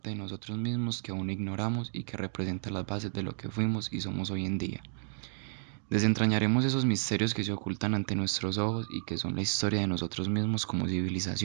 de nosotros mismos que aún ignoramos y que representa las bases de lo que fuimos y somos hoy en día. Desentrañaremos esos misterios que se ocultan ante nuestros ojos y que son la historia de nosotros mismos como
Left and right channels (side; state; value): left; silent; digital silence